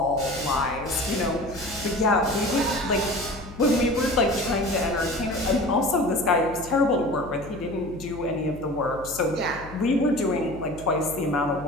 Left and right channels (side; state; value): left; noise; hum, 16 dB below the sound